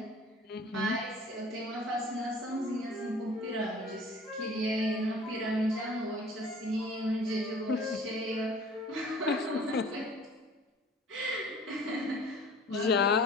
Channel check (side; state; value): both; normal; correlation 0.47